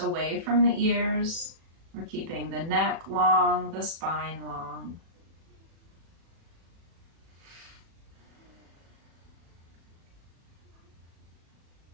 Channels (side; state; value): left; late; 36 ms